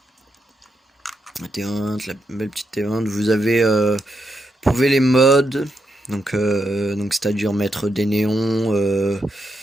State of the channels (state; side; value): normal; both; correlation 0.83